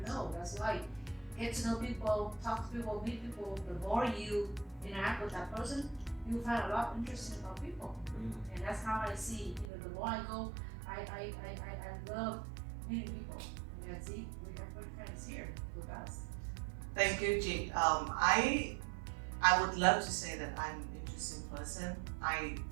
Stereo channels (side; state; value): left; drops out; at 9.7 s